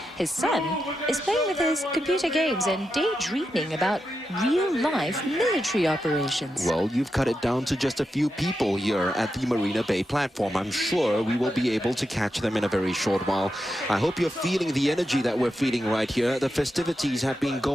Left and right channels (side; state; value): both; normal; correlation 0.87